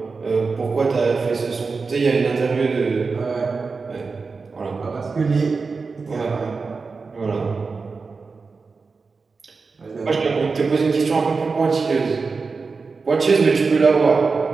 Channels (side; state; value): left; quieter; 4.5 dB